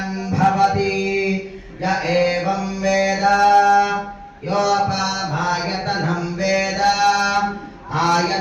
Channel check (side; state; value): both; identical; correlation 1.00